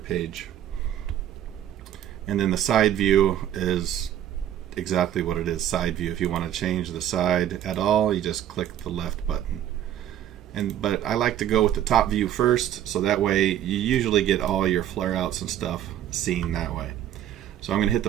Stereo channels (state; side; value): quieter; left; 11.2 dB